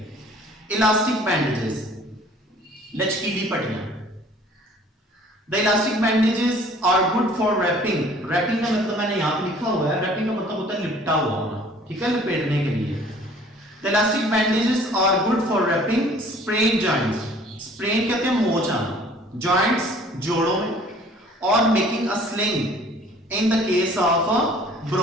इलास्टिक बैंडेजेस, लचकीली पट्टियां। The elastic bandages are good for wrapping. Wrapping का मतलब मैंने यहाँ पे लिखा हुआ है, wrapping का मतलब होता है लिपटा हुआ होना, ठीक है, लपेटने के लिए। The elastic bandages are good for wrapping sprain joints. Sprain कहते हैं मोच आना, joints जोड़ों में, और making a sling in the case of a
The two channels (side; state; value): both; normal; correlation 0.53